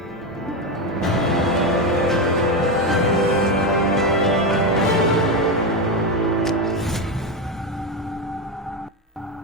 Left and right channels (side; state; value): both; normal; correlation 0.12